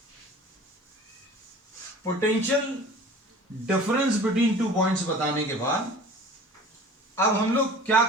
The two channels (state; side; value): normal; both; correlation 0.43